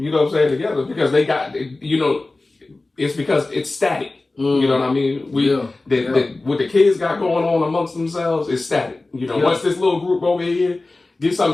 know what I'm saying? Together because they got. It's because it's static. You know what I mean? What the kids got going on amongst themselves is static. Once this little group over here get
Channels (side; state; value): right; quieter; 3.2 dB